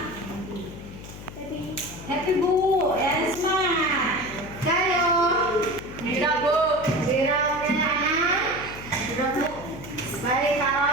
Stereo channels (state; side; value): noise; left; hum, 14 dB below the sound